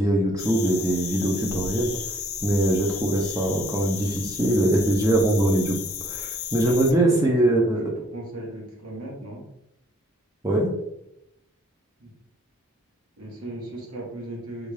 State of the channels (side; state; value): both; normal; correlation 0.62